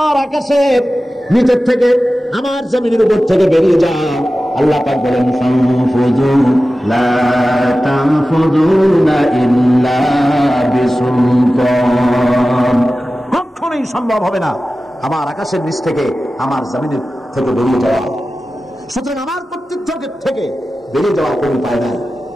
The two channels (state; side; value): normal; both; correlation 0.95